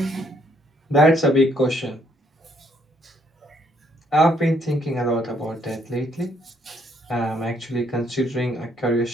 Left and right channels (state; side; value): normal; both; correlation 0.69